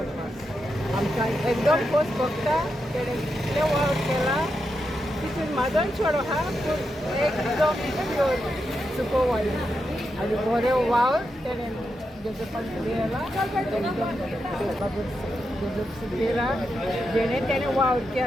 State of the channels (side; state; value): both; normal; correlation 0.85